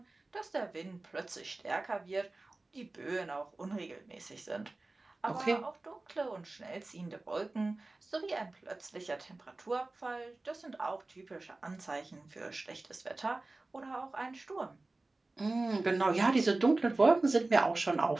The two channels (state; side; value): quieter; left; 3.1 dB